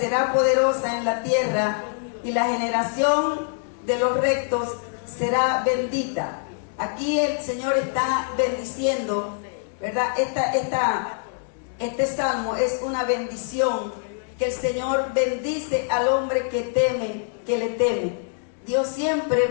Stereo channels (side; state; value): right; silent; digital silence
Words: poderosa en la tierra y la generación de los rectos será bendita. Aquí el Señor está bendiciendo, ¿verdad? Este salmo es una bendición, que el Señor bendice al hombre que teme, que le teme. Dios siempre